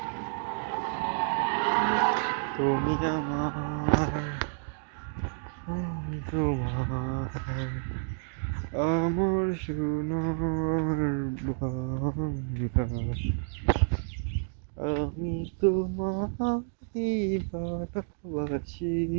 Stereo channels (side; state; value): left; silent; digital silence